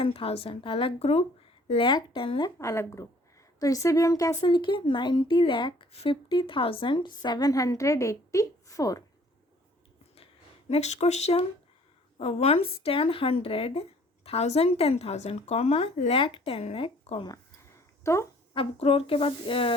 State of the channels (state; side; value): normal; both; correlation 0.56